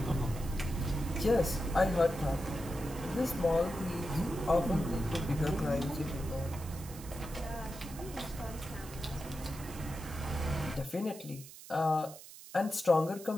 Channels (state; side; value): noise; right; hiss, 16 dB below the sound